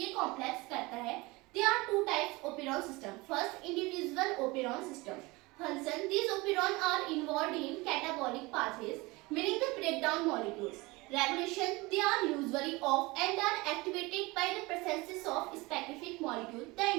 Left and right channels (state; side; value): quieter; left; 23.2 dB